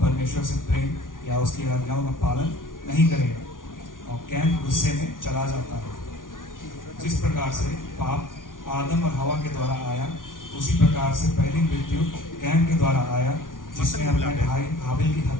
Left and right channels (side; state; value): right; late; 0.89 ms